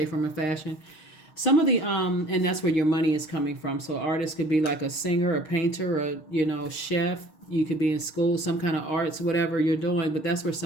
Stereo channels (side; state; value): right; late; 6.4 ms